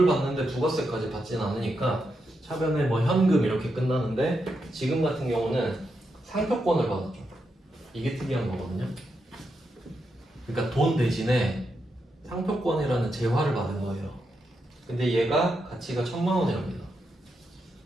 받는데 부가세까지 받지는 않으니까 차변에 뭐 현금 이렇게 끝나는데 지금 같은 경우는 상표권을 받았죠. 이게 특이한 거거든요. 그러니까 돈 대신에 상표권이라는 재화를 받은 거예요. 근데 얘가 가치가 1000만 원이랍니다.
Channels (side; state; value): both; normal; correlation 0.84